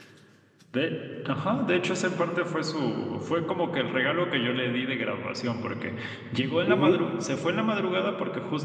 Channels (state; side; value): identical; both; correlation 1.00